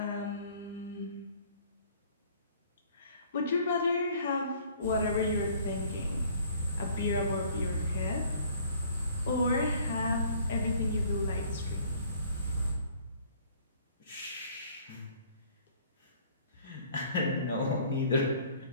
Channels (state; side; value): inverted; both; correlation -0.56